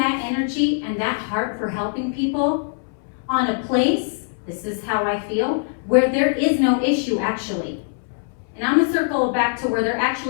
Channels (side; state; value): right; silent; 64 dB below the other